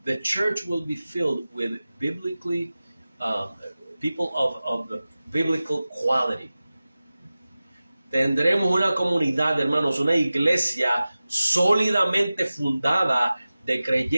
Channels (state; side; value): inverted; both; correlation -0.96